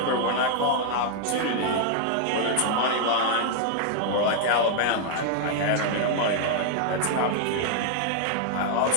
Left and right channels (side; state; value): both; different; correlation -0.01